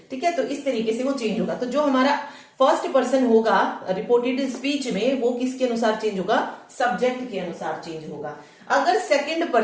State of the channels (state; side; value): identical; both; correlation 1.00